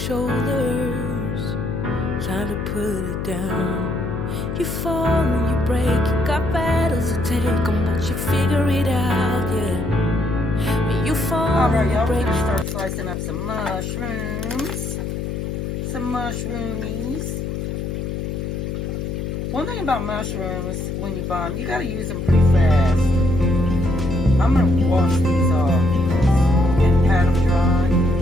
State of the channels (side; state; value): left; noise; hum, 4 dB below the sound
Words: time to put it down. You fall and you break, you got battles to take on, but you figure it out, yeah. When you fall Alright, and you y'all, we're break. going to start slicing up some mushrooms. Some mushroomies. One thing about mushrooms, when you buy them, you got to use them pretty fast. I'm going to wash these off and pat them dry.